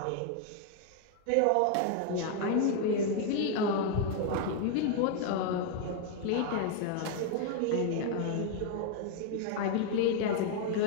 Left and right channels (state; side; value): different; both; correlation 0.00